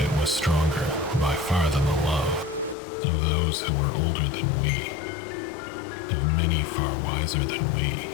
it was stronger by far than the love of those who were older than we, of many far wiser than we.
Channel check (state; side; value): drops out; right; at 2.8 s